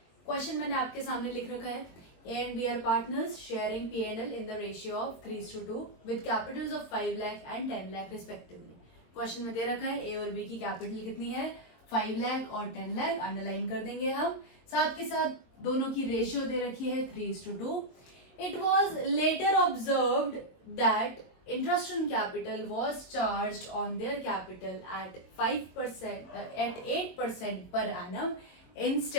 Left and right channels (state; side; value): late; right; 22 ms